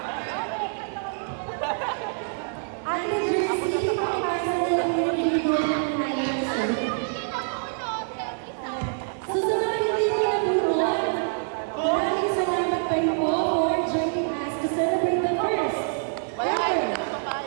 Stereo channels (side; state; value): left; silent; digital silence